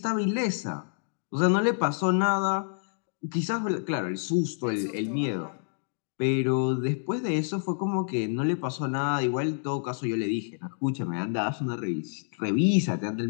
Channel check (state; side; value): silent; right; digital silence